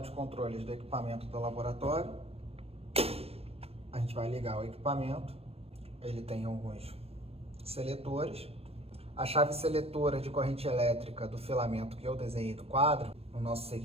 de controles do equipamento do laboratório. A gente vai ligar o equipamento. Ele tem alguns seletores. A chave seletora de corrente elétrica do filamento que eu desenhei do quadro, no nosso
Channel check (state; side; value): late; left; 0.28 ms